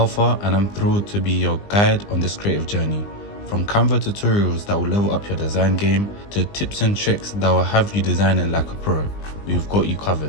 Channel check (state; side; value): late; right; 20 ms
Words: and I'm thrilled to be your guide on this creative journey. From Canva tutorials that will level up your design game to tips and tricks that will have you designing like a pro, we've got you